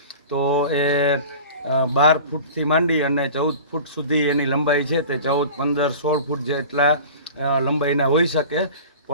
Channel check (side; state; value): both; inverted; correlation -0.39